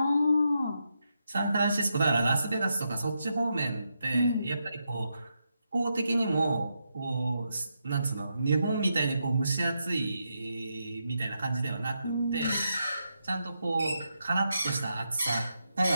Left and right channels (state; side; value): inverted; both; correlation -0.84